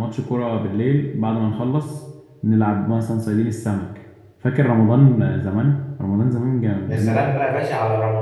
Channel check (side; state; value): both; identical; correlation 1.00